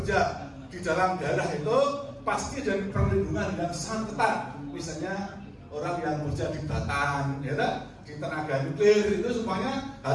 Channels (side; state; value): both; identical; correlation 1.00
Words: di dalam daerah itu pasti dari perlindungan yang sangat ketat. Misalnya orang yang bekerja di Batan, ya, di tenaga nuklir itu semuanya